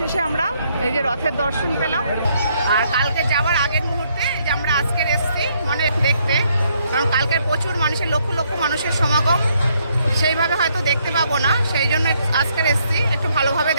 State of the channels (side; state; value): both; inverted; correlation -0.71